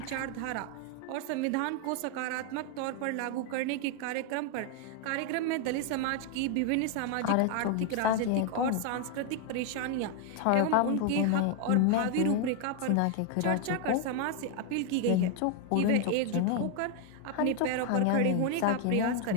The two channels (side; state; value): both; different; correlation 0.00